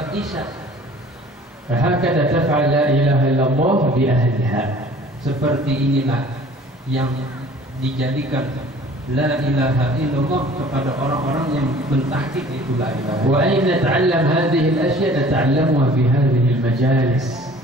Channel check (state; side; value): normal; both; correlation 0.50